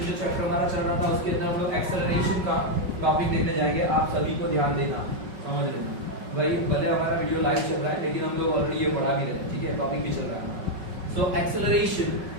जो chapter हमारा चल रहा था उसके अंदर हम लोग एक्सेलरेशन का टॉपिक देखने जाएंगे. आप सभी को ध्यान देना, समझ लेना. भाई भले हमारा वीडियो लाइव चल रहा है लेकिन हम लोग ऑलरेडी ये पढ़ा भी रहे हैं, ठीक है, टॉपिक भी चल रहा है. So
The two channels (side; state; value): left; late; 5.4 ms